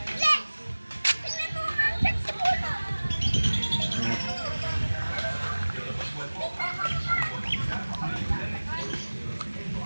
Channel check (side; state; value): both; inverted; correlation -1.00